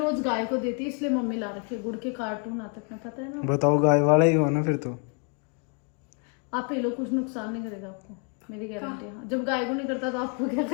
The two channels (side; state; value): right; quieter; 38.6 dB